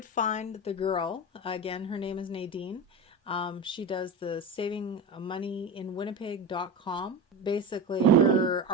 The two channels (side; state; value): both; normal; correlation 0.23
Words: find the girl. Again, her name is Nadine. She does the Saving Money in Winnipeg.com. Basically, her